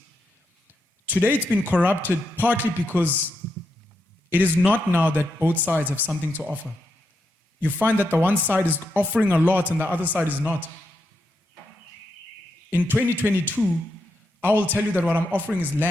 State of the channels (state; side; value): normal; both; correlation 0.83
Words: Today it's been corrupted partly because it is not now that both sides have something to offer. You find that the one side is offering a lot and the other side is not. In 2022, I will tell you that what I'm offering is